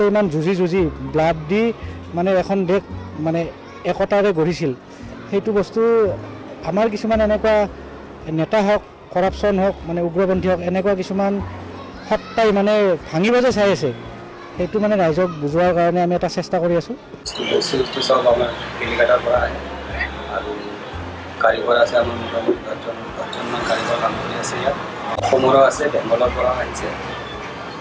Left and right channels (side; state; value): both; identical; correlation 1.00